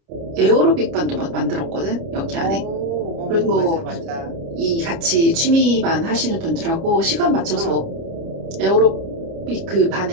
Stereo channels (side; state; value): left; late; 30 ms